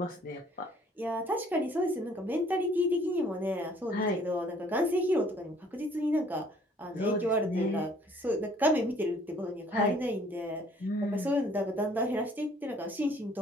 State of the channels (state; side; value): normal; both; correlation 0.58